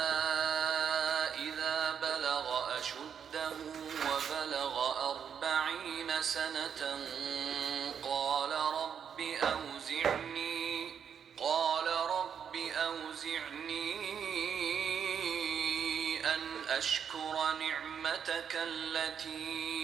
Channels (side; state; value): left; quieter; 7.7 dB